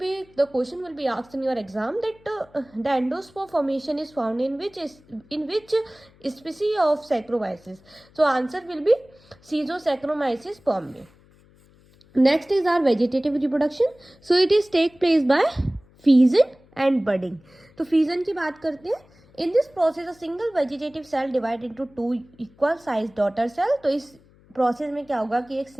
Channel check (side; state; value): left; noise; hum, 29 dB below the sound